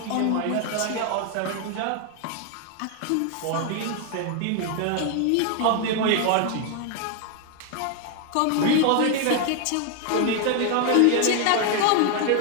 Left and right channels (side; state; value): both; different; correlation 0.00